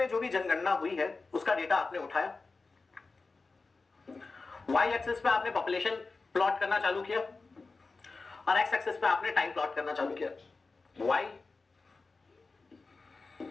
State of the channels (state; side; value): quieter; right; 3.9 dB